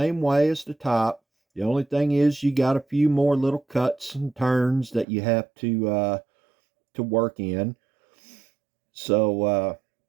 way as the top. The only thing is you got a few more little cuts and turns that you have to work in. So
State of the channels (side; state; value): left; drops out; at 5.1 s